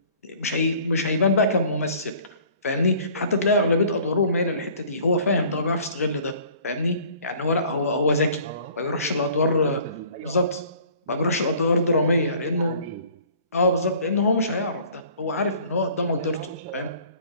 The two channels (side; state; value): both; inverted; correlation -0.52